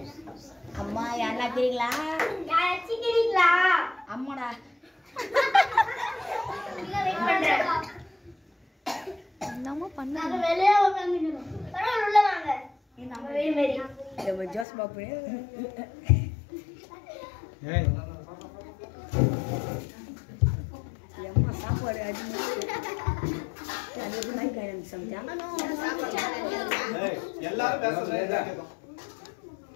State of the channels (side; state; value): right; drops out; at 14.7 s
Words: அம்மா யாரா தெரியுங்களா? யாச்சிக்கிறீங்களா? அம்மாடா. நம்ம பண்ணாங்க வெளியே உட்கார்ந்துறோம். பரவாயில்லை உள்ள வாங்க. நம்ம வெளிய மேரி. நம்ம ஜோஸ் பாப்பு. ஏய் அம்மா சாப்பாடு அடிச்சு. அது மைக் ஆயிடுச்சு சமைச்சா. ஏய் எல்லாரும் பேசுறீங்க.